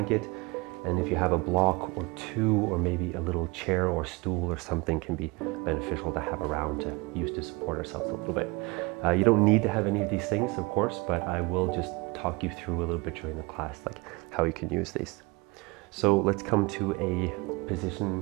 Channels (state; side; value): quieter; left; 26.1 dB